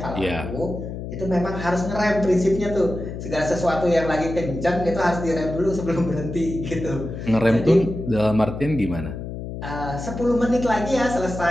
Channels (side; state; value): left; noise; hum, 8 dB below the sound